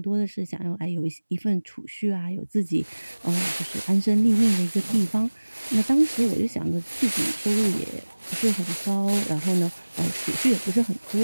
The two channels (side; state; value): both; inverted; correlation -1.00